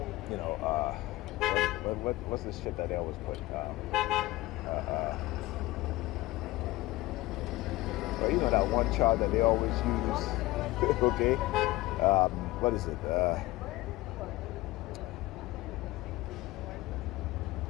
what's this shit that they always put? That one charge that they always use, okay? What is it?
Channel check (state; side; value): quieter; right; 19.0 dB